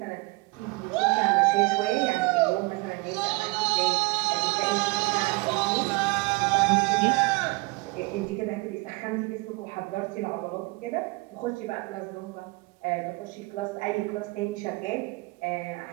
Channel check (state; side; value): quieter; left; 25.9 dB